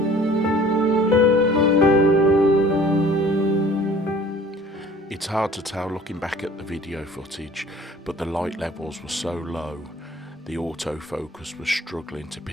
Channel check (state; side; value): normal; both; correlation 0.50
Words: It's hard to tell looking back at the video footage, but the light levels were so low, the autofocus was struggling to